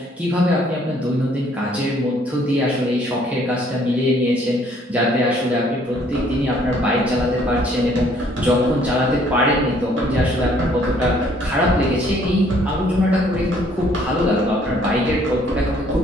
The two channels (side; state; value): both; normal; correlation 0.62